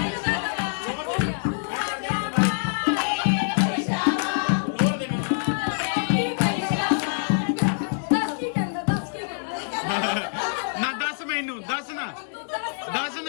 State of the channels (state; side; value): silent; right; digital silence